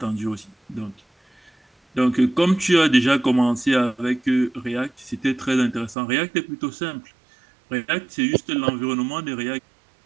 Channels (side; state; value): left; drops out; at 6.0 s